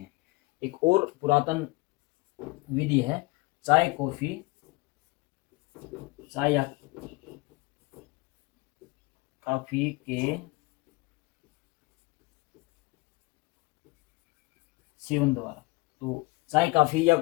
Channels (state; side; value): quieter; right; 23.8 dB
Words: एक और पुरातन विधि है चाय कॉफ़ी, चाय या काफ़ी के सेवन द्वारा। तो चाय काफ़ी या